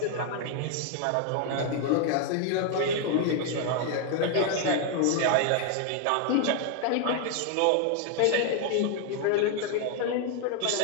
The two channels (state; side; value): different; both; correlation 0.00